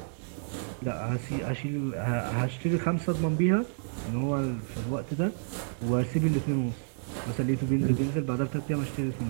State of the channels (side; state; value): left; silent; digital silence